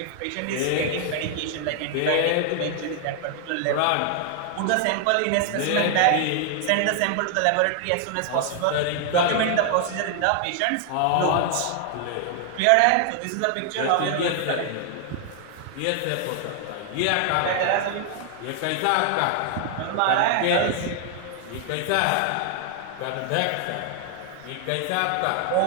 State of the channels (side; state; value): both; different; correlation 0.00